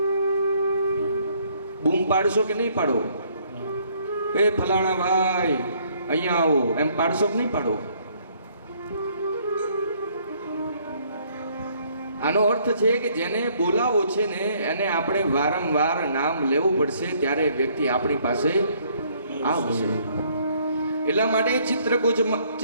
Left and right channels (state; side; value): inverted; both; correlation -0.65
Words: બૂમ પાડશો કે નહીં પાડો? એ ફલાણા ભાઈ અહીંયા આવો એમ પાડશો કે નહીં પાડો? આનો અર્થ છે કે જેને બોલાવો છે ને એને આપણે વારંવાર નામ લેવું પડશે, ત્યારે વ્યક્તિ આપણી પાસે આવશે. એટલા માટે